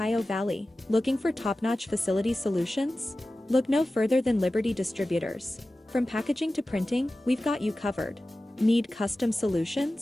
Valley, looking for top-notch facility solutions? Look no further than Liberty Distributors. From packaging to printing, we've got you covered. Need custom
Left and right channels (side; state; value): both; normal; correlation 0.95